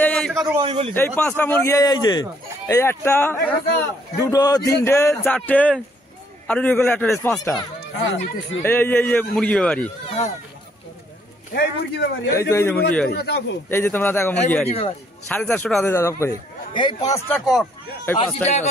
এই 5টা মুরগি, এই যে এই একটা, দুটো, তিনটে, চারটে, আর একটা 5টা। এই যে মুরগি ব্যাপারী, এই যে মুরগি বাড়ি, এই যে তোমরা দেখো মুরগি বাড়ি 450 টাকা দিয়ে দাও করে। এই 5টা কক, এই 5টা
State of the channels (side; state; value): both; normal; correlation 0.67